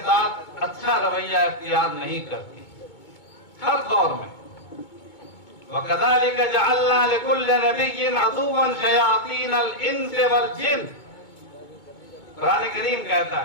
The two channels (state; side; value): late; right; 2.2 ms